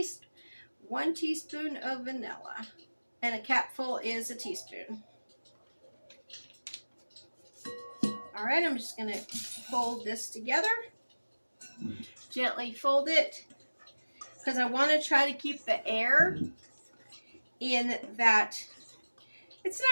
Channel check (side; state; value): both; inverted; correlation -1.00